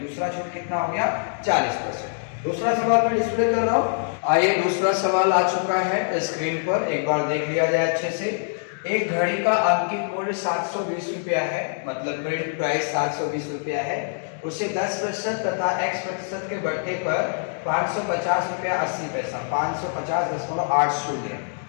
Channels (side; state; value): right; silent; digital silence